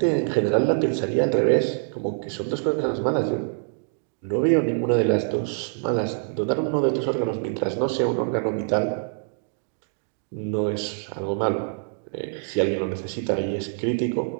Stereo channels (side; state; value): left; silent; digital silence